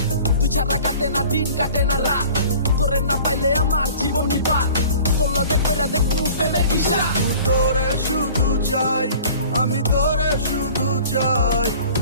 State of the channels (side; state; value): both; inverted; correlation -0.45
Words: তুই ছাড়া কাটে না দিন কাটে না রাত, তোরে না পাইলে আমার জীবন নিবা। তোর লগে কইরা দেখমু প্রেমের কিসা। তোরে শুধু চাই, আমি তোরে শুধু চাই,